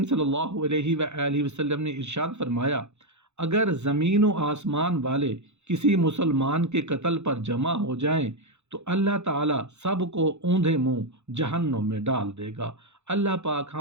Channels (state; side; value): late; left; 0.82 ms